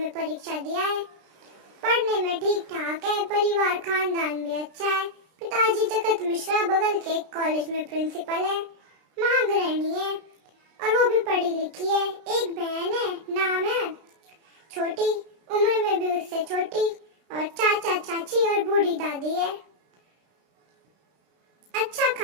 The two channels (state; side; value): late; left; 33 ms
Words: परीक्षा दिया है। पढ़ने में ठीक ठाक है, परिवार खानदान भी अच्छा है। पिताजी जगत मिश्रा बगल के एक कॉलेज में प्रिंसिपल है, महागृहिणी है और वो भी पढ़ी लिखी है। एक बहन है, नाम है छोटी, उम्र में भी उससे छोटी, और चाचा चाची और बूढ़ी दादी है। अच्छा